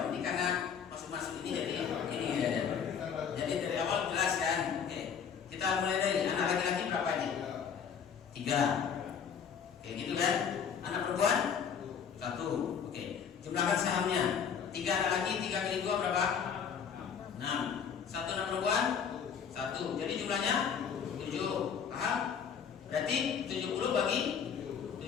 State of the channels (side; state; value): right; quieter; 7.2 dB